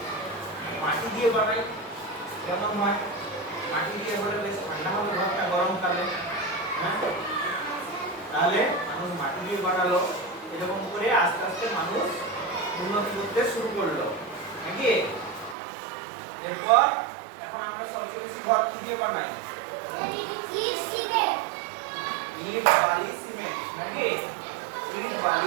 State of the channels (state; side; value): drops out; left; at 15.6 s